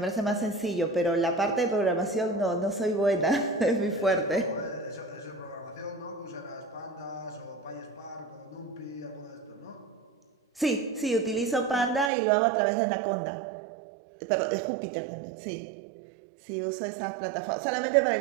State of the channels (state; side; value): drops out; left; at 12.1 s